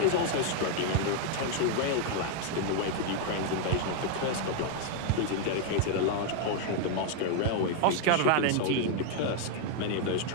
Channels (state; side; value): different; both; correlation 0.01